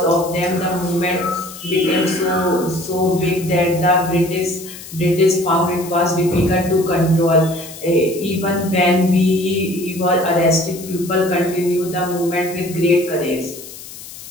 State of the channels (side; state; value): left; noise; hiss, 15 dB below the sound